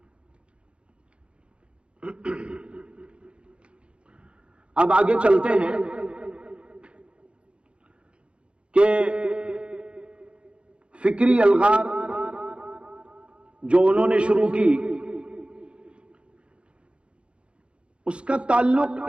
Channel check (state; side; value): late; left; 0.058 ms